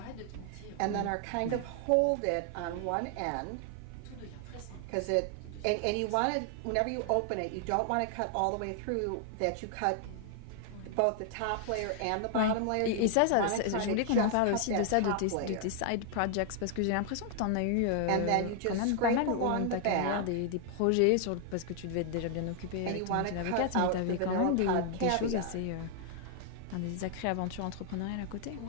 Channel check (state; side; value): different; both; correlation 0.00